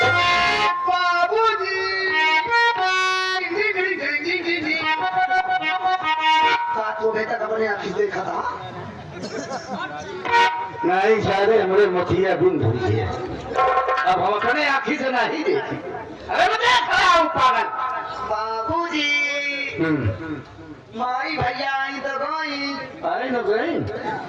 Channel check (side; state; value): both; identical; correlation 1.00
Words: देखा था नहीं शायद हमारे मथिया बिन धुरी है अब हम अपने आँखी से नहीं देखी अरे मैं देख रहा हूँ पागल बाबूजी माई भैया आई तो गई अरे न गई